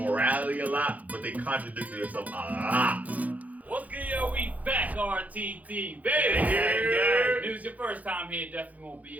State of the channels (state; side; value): late; left; 0.076 ms